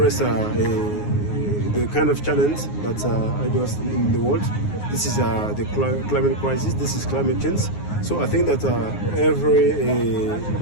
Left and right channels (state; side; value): late; right; 9.6 ms